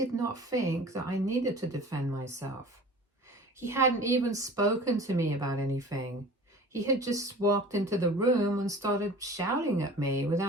not think that I needed to defend myself. He hadn't even spoken to me about anything. He had just walked into the room and started shouting at me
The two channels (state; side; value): normal; both; correlation 0.42